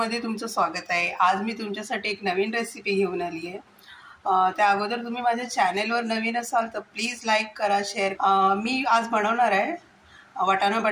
तुमचं स्वागत आहे। आज मी तुमच्यासाठी एक नवीन रेसिपी घेऊन आली आहे। त्या अगोदर तुम्ही माझ्या चॅनलवर नवीन असाल तर प्लीज लाईक करा, शेअर। मी आज बनवणार आहे वाटाणा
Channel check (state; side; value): identical; both; correlation 1.00